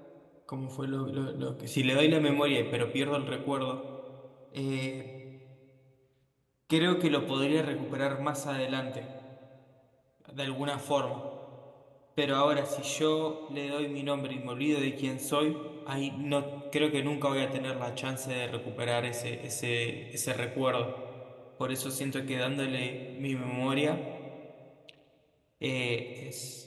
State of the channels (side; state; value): both; identical; correlation 1.00